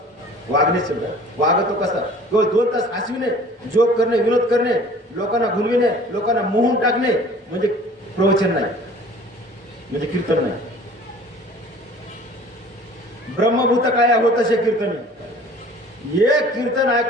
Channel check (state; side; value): normal; both; correlation 0.48